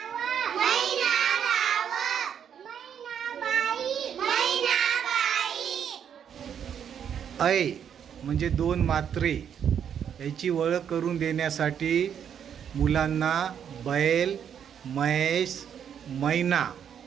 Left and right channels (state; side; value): quieter; left; 8.4 dB